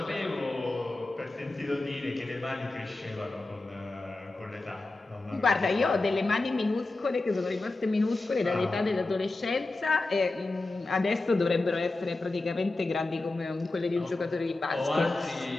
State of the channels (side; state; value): right; quieter; 3.1 dB